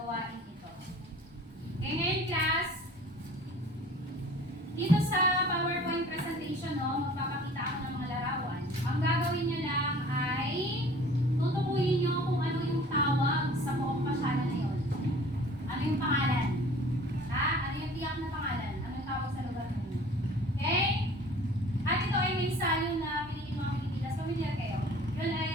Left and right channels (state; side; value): normal; both; correlation 0.47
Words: ito. Okay, ngayon class, dito sa PowerPoint presentation, magpapakita ako ng mga larawan. Ang gagawin nyo lang ay tutukuyin nyo kung ano yung tawag sa buong pasyalan na yun. Ano yung pangalan? Ano yung tiyak na pangalan? Ano yung tawag sa lugar nyo? Okay? At ito ay may salyo na pinili mga Pilipinas. Familiar kayo? Yun